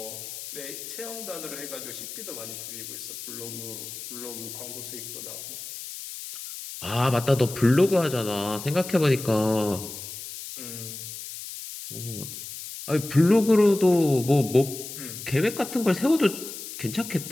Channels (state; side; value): noise; left; hiss, 10 dB below the sound